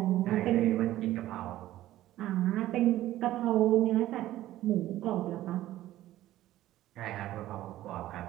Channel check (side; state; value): left; quieter; 14.5 dB